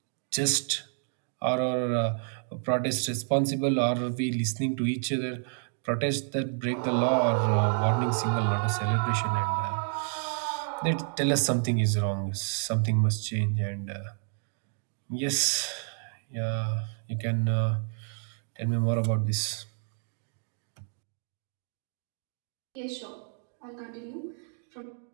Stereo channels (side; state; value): left; silent; 58 dB below the other